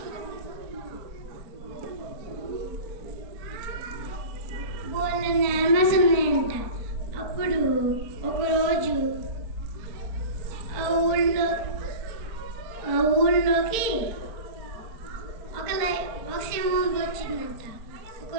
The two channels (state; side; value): late; left; 4.4 ms